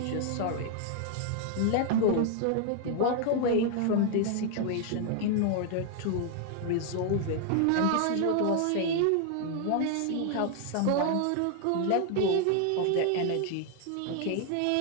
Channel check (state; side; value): different; both; correlation 0.00